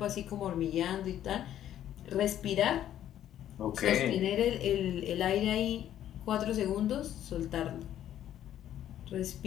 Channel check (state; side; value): quieter; right; 11.4 dB